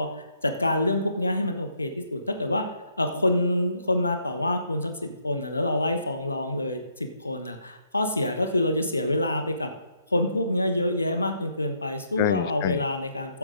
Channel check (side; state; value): both; inverted; correlation -0.71